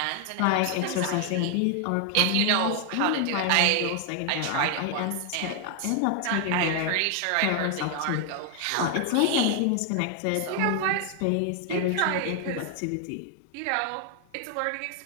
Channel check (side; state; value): both; different; correlation 0.00